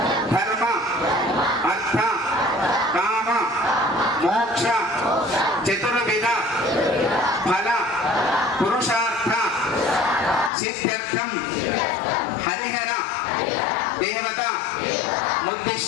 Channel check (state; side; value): drops out; right; at 10.5 s